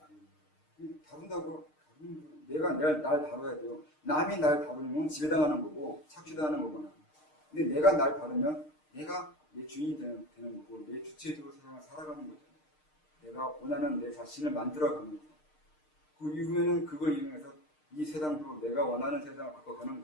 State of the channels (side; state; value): right; late; 6.6 ms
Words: 다룬다고 내가 날 다뤄야 돼요. 남이 날 다루면 지배당하는 거고 착취당하는 거구나. 근데 내가 날 다루면 내가 내 주인이 되는 거고 내 주체적으로 세상을 살아가는 거잖아요. 내가 원하는 내 자신을 만들어가면서 그 이후에는 그걸 이용해서 이 세상으로 내가 원하는 세상을 바꿔가는